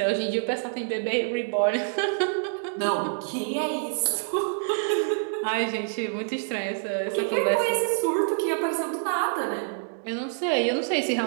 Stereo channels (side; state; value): left; silent; digital silence